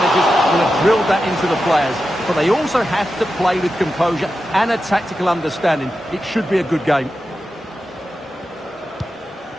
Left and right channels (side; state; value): both; normal; correlation 0.90